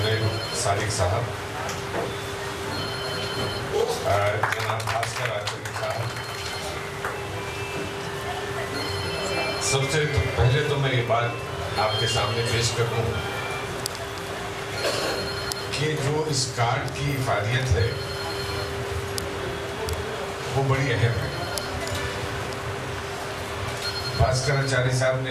صادق صاحب، جناب بھاسکر آچاری صاحب، سب سے پہلے تو میں یہ بات آپ کے سامنے پیش کروں کہ جو اس کارڈ کی افادیت ہے وہ بڑی اہم ہے۔ بھاسکر آچاری صاحب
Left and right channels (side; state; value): both; identical; correlation 1.00